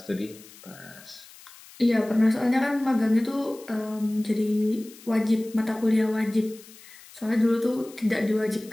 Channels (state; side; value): noise; left; hiss, 21 dB below the sound